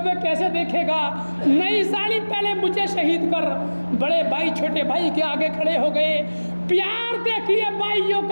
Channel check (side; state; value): both; inverted; correlation -1.00